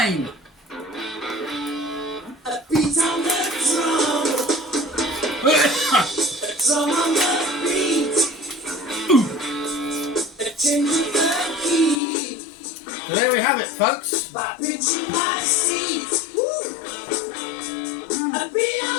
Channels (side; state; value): right; drops out; at 12.0 s